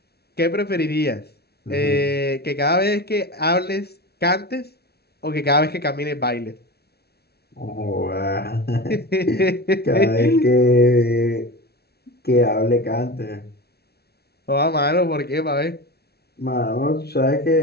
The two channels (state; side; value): late; right; 0.47 ms